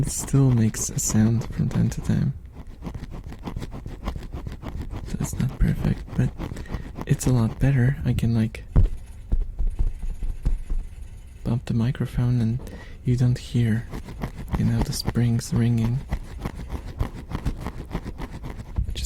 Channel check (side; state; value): both; identical; correlation 1.00